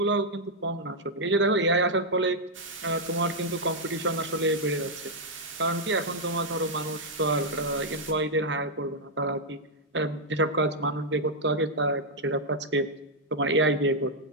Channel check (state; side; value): normal; both; correlation -0.04